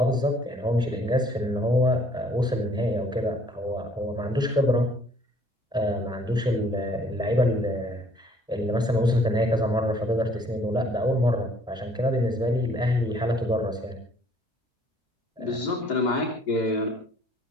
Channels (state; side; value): normal; both; correlation 0.59